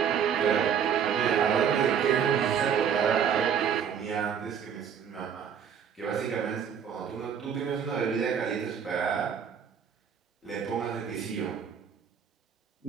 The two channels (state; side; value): quieter; left; 7.8 dB